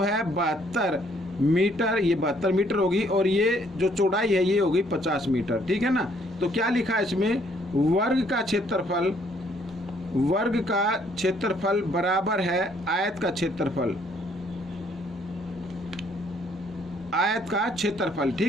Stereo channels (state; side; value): normal; both; correlation 0.65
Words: 72 मीटर, ये 72 मीटर होगी, और ये जो चौड़ाई है ये होगी 50 मीटर, ठीक है ना। तो क्या लिखा है इसमें, वर्ग का क्षेत्रफल बराबर है आयत का क्षेत्रफल, आयत का क्षेत्रफल,